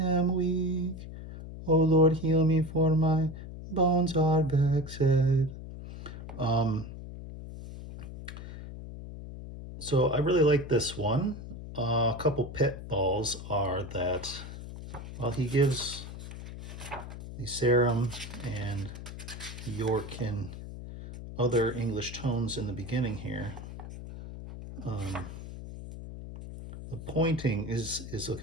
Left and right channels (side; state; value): left; noise; hum, 11 dB below the sound